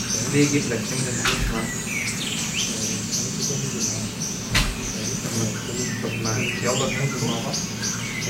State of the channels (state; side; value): identical; both; correlation 1.00